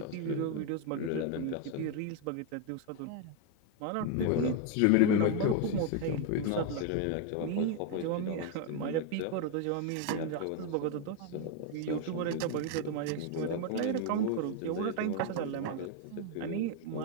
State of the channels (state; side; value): different; both; correlation 0.01